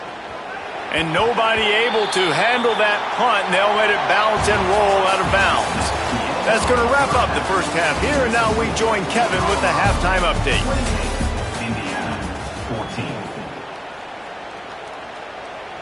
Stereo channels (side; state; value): both; identical; correlation 1.00